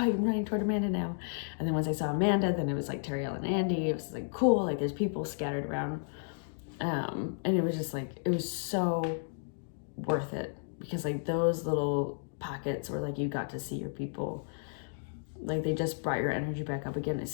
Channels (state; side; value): silent; right; digital silence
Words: I'm running toward Amanda now. And then once I saw Amanda, then it was like Terry and Andy. It was like, cool, like there's people scattered around. And it was just like, it was so worth it, because like those little pockets where like you got to see your people, like they just brought your energy back up again,